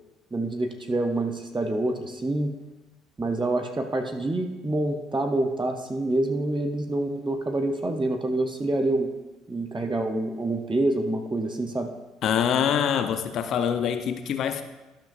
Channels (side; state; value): both; normal; correlation 0.76